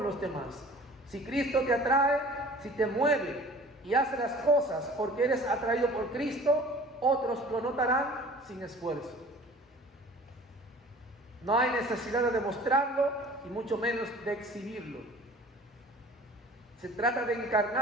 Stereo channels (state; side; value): normal; both; correlation 0.46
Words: los demás. Si Cristo te atrae, si te mueve y hace las cosas porque eres atraído por Cristo, otros lo notarán sin esfuerzo. No hay necesidad de demostrarlo y mucho menos de exhibirlo. Se trata de